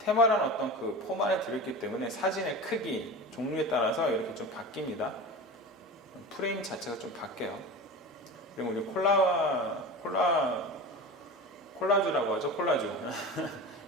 어떤 그 포만에 들어있기 때문에 사진의 크기, 종류에 따라서 이렇게 좀 바뀝니다. 프레임 자체가 좀 바뀌어요. 그리고 우리 콜라주라고 하죠. 콜라주.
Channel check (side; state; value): both; normal; correlation 0.30